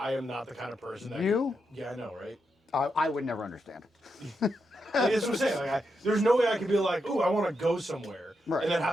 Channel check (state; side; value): normal; both; correlation 0.84